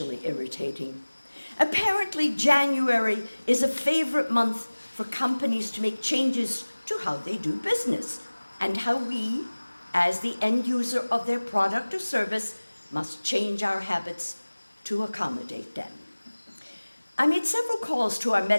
irritating. Apparently, January is a favorite month for companies to make changes to how they do business and how we, as the end user of their product or service, must change our habits to accommodate them. I made several calls to our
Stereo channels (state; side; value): inverted; both; correlation -1.00